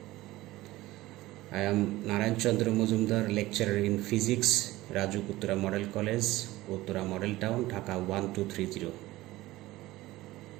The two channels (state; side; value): quieter; left; 17.9 dB